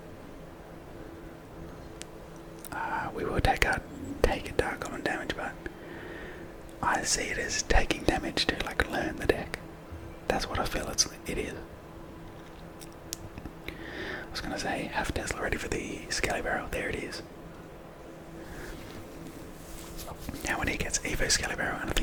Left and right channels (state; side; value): identical; both; correlation 1.00